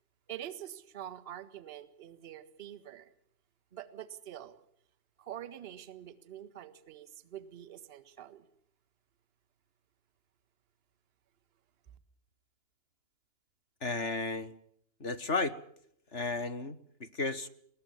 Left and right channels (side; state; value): right; late; 2.9 ms